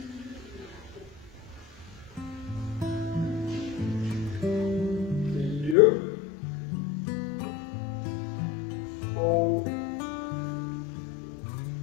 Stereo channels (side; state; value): right; drops out; at 5.8 s